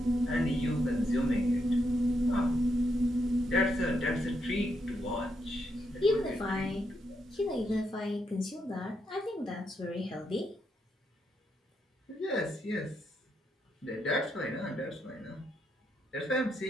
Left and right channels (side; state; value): both; normal; correlation 0.80